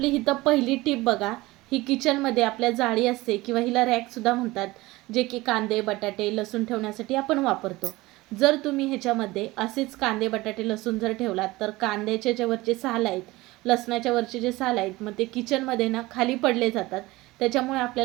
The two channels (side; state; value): left; quieter; 20.1 dB